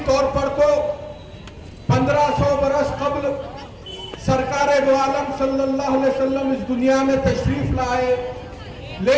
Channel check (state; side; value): identical; both; correlation 1.00